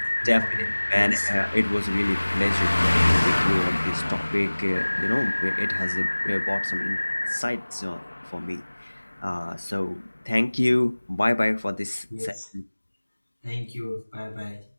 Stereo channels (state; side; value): inverted; both; correlation -1.00